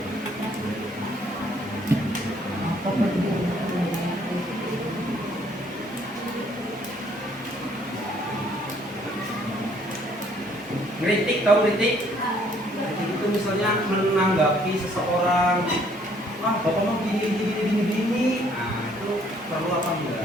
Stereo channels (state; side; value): normal; both; correlation 0.63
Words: Kritik, tahu kritik? Kritik itu misalnya menanggapi seseorang, bapak mau gini. Nah, itu perlu apa